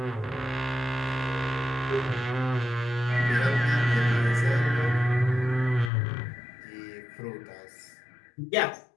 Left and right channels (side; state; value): right; drops out; at 5.9 s